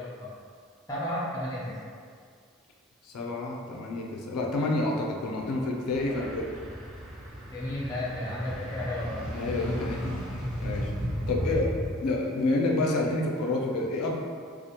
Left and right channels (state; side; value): normal; both; correlation 0.48